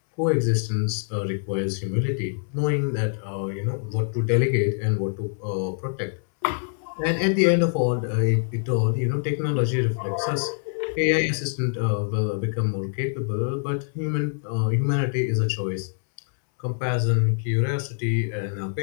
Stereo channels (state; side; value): silent; right; 62 dB below the other